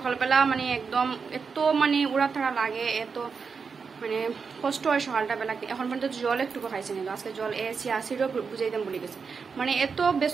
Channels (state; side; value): quieter; left; 5.4 dB